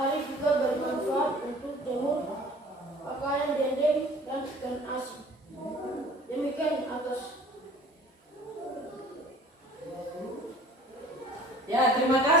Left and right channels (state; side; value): normal; both; correlation 0.49